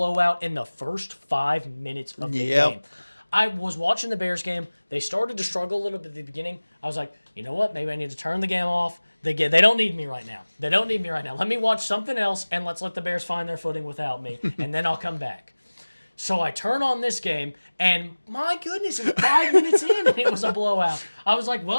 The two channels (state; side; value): inverted; both; correlation -1.00